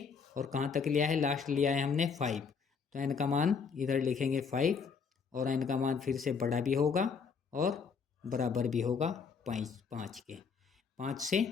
और कहाँ तक लिया है, लास्ट लिया है हमने 5। तो n का मान इधर लिखेंगे 5 और n का मान फिर से बड़ा भी होगा और बराबर भी होगा 5 के। 5 से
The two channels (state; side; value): quieter; right; 5.8 dB